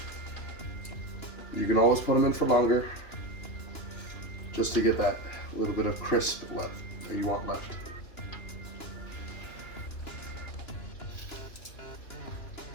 You can always put them in for longer, just to get that little bit of crisp left that you want left.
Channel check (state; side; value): late; right; 2.9 ms